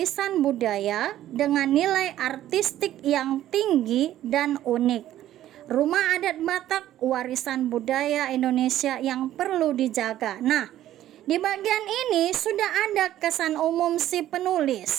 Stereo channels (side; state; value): left; quieter; 12.9 dB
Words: budaya dengan nilai artistik yang tinggi dan unik. Rumah adat Batak warisan budaya Indonesia yang perlu dijaga. Nah, di bagian ini sudah ada kesan umum si